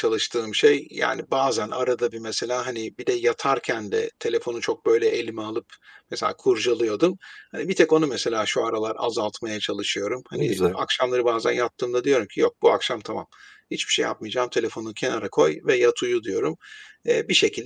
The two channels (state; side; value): identical; both; correlation 1.00